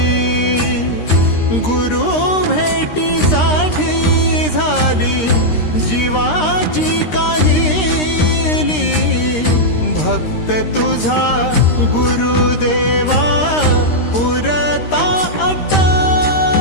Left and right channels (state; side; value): late; right; 13 ms